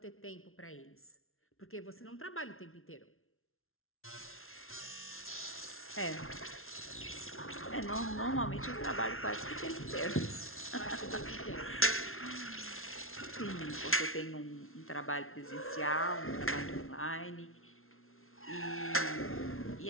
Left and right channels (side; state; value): right; late; 0.62 ms